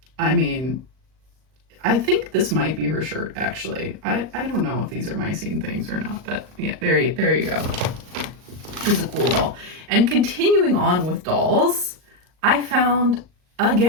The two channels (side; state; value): left; late; 38 ms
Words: I mean, I think this might be her shirt, actually. I don't know if these are My Scene things or not, but yeah, there you go. She's a cool doll. And continuing on with dolls, I found,